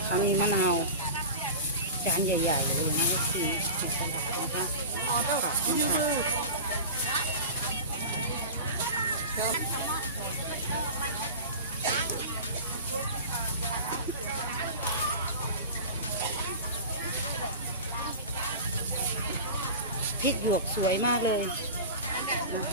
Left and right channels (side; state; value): both; inverted; correlation -0.31